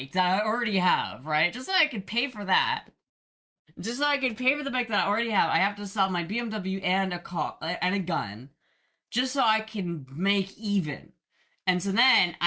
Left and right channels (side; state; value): both; identical; correlation 1.00